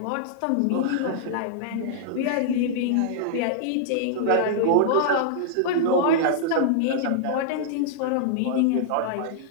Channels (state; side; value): different; both; correlation -0.01